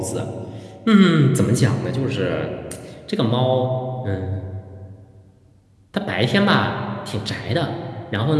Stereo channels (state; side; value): identical; both; correlation 1.00